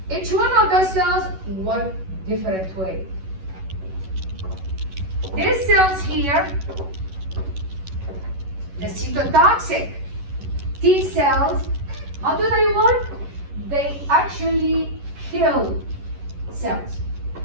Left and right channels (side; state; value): left; late; 11 ms